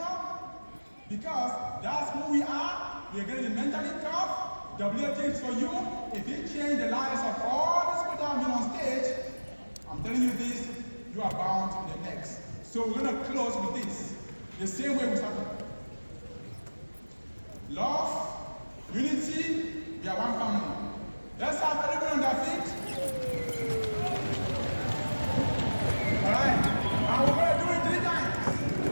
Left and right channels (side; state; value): both; inverted; correlation -1.00